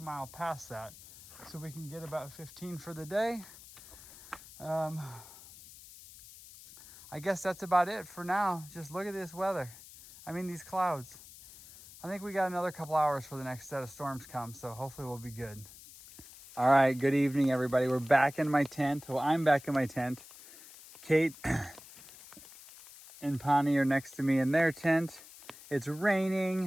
mile past that so we can get about 15 for the day. I guess that's about it for now. Just look at this weather. I mean, these clouds. I think we got another couple hours for the next set of storms come, so hopefully we'll be good. All right, good evening, everybody. We're back in my tent. Well, I'm back in my tent. Kate and Pani are next to me in their tent. It's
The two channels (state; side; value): noise; left; hiss, 18 dB below the sound